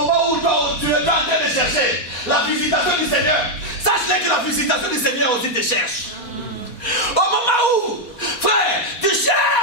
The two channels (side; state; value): right; late; 4.1 ms